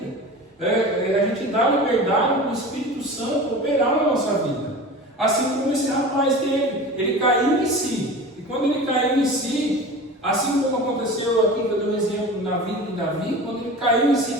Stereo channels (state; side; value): normal; both; correlation 0.34